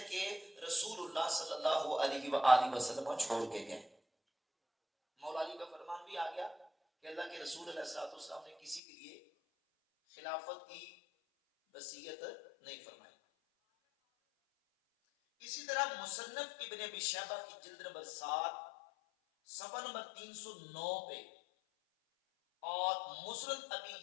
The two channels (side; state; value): right; drops out; at 8.8 s